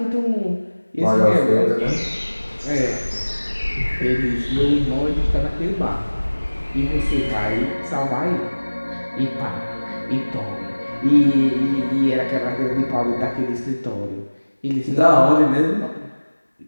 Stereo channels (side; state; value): both; inverted; correlation -1.00